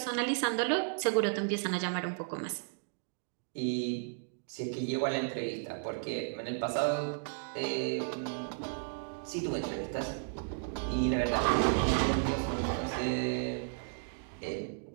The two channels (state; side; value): silent; left; digital silence